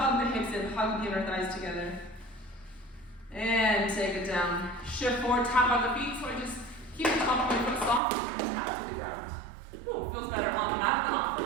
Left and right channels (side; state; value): left; drops out; at 8.0 s